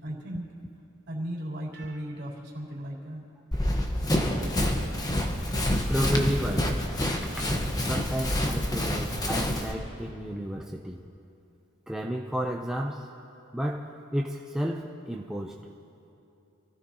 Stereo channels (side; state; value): both; normal; correlation 0.80